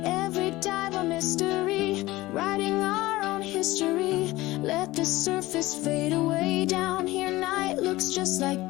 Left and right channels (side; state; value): right; quieter; 18.6 dB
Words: Every dive a mystery, writing our own history. Let the surface fade away. Down here night looks just like